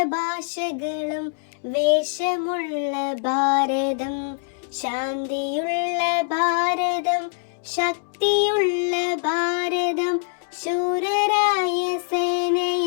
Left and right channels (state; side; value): silent; right; 63 dB below the other